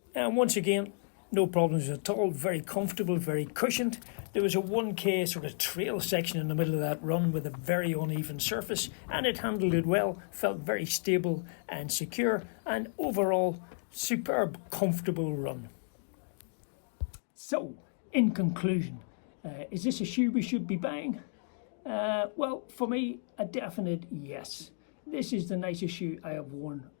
And once again, no problems at all, very comfortable, very cushioned. There was a 1k sort of trail section in the middle of that run with a very uneven surface, and it handled it well, felt very stable and secure, and overall, superb, comfortable run. So, in conclusion, is this a shoe we should be buying? Well, for me, a definite yes. This is the nicest shoe I have worn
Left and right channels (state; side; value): silent; right; digital silence